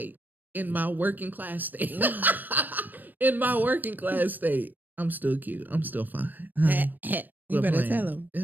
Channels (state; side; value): late; left; 0.086 ms